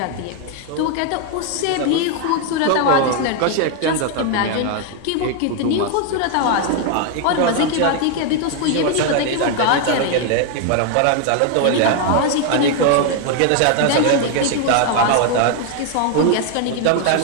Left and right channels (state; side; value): different; both; correlation 0.01